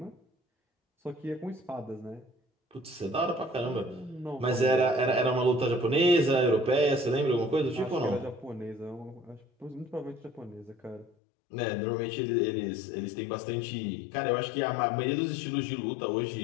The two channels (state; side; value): drops out; right; at 11.1 s